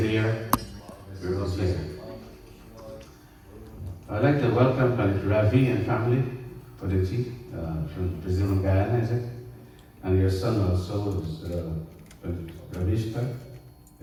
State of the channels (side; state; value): both; identical; correlation 1.00